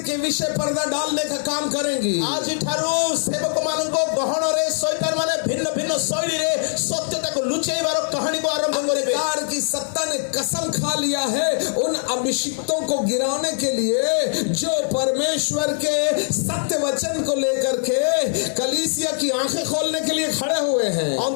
के विषय पर्दा डालने का काम करेंगी। ଆଜିଠାରୁ ସେବକମାନଙ୍କ ଗହଣରେ ଶୈତାନ ମାନେ ଭିନ୍ନ ଭିନ୍ନ ଶୈଳୀରେ ସତ୍ୟତାକୁ ଲୁଚେଇବାର କାହାଣୀକୁ ଆରମ୍ଭ କରିବେ। अंधकार की सत्ता ने कसम खा लिया है उन अभिषिक्तों को गिराने के लिए जो परमेश्वर के सत्य वचन को लेकर के कलीसिया की आंखें खोलने के लिए खड़े हुए हैं।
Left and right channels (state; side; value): silent; right; digital silence